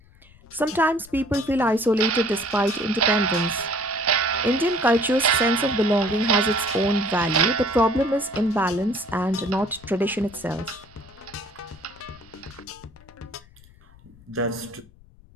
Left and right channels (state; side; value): noise; left; rumble, 25 dB below the sound